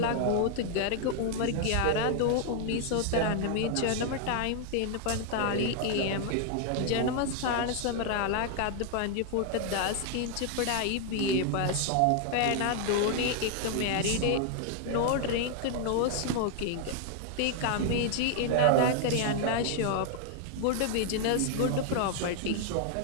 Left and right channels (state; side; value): different; both; correlation 0.00